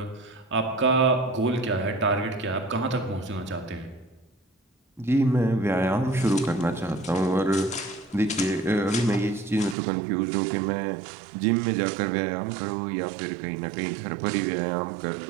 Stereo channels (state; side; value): drops out; left; at 9.8 s